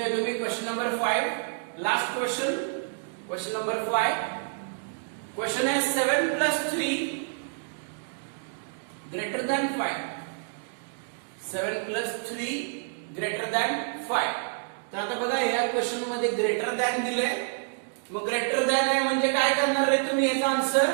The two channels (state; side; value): silent; left; digital silence